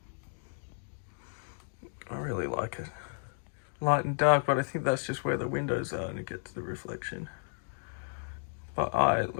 I really like it. Light and dark, but I think that's just where the windows are and it gets the reflection. But it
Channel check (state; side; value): silent; right; digital silence